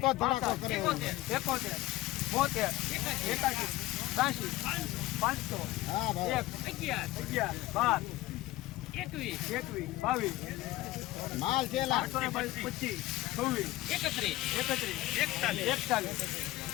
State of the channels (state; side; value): quieter; right; 17.3 dB